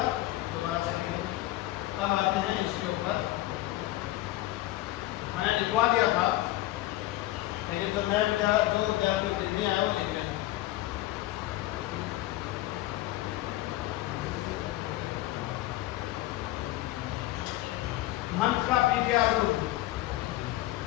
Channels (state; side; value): quieter; right; 16.4 dB